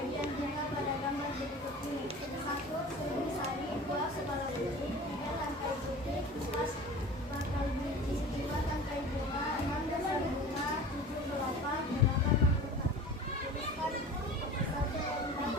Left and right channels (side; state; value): both; normal; correlation 0.39